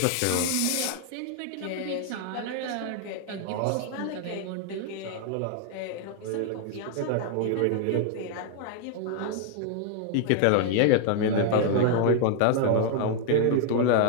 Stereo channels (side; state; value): both; different; correlation 0.00